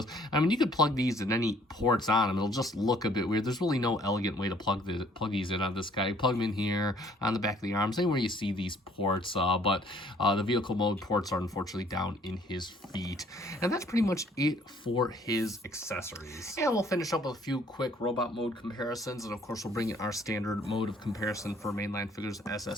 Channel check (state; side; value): normal; both; correlation 0.59